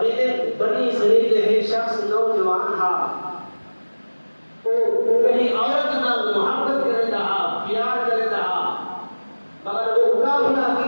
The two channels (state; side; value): inverted; both; correlation -1.00